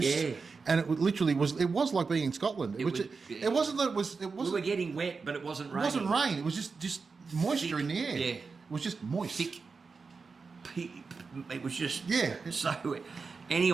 Yeah. And it literally was. It was like being in Scotland. It wasn't that it was. It wasn't. We were getting wet, but it wasn't rain. It wasn't rain. It was just moisture in the air. Yeah. It was just moist. Thick. It was just. So wet.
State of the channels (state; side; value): quieter; left; 4.7 dB